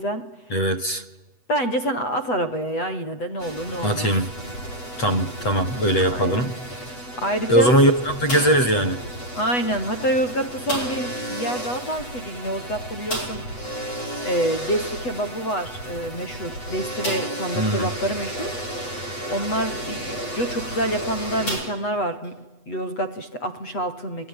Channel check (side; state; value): right; late; 8.1 ms